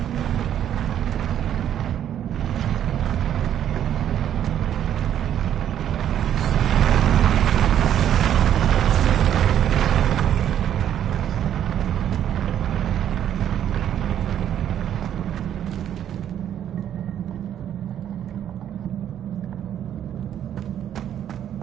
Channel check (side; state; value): left; quieter; 10.3 dB